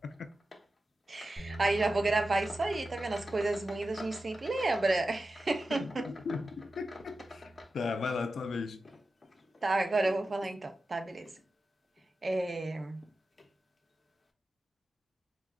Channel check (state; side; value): normal; both; correlation 0.92